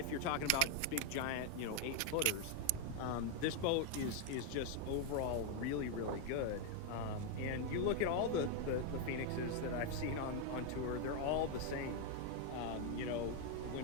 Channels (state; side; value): different; both; correlation 0.01